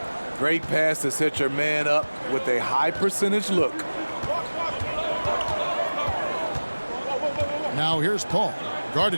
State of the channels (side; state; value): both; inverted; correlation -1.00